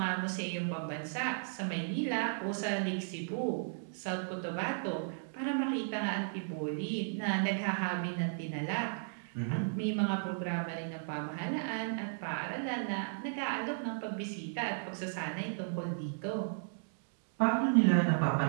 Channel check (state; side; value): silent; left; digital silence